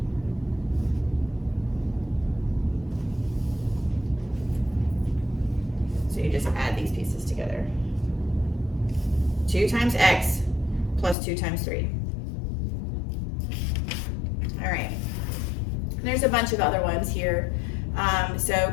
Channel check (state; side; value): drops out; right; at 11.2 s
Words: So you just add these pieces together. 2 times x plus 2 times 3. All right. And there's a bunch of other ones here. So